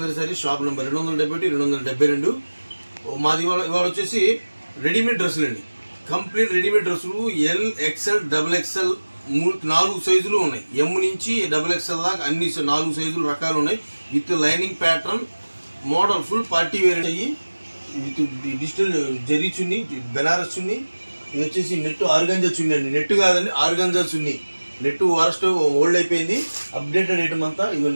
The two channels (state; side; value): inverted; both; correlation -1.00